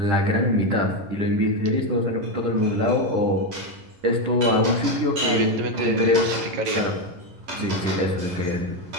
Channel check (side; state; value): left; late; 11 ms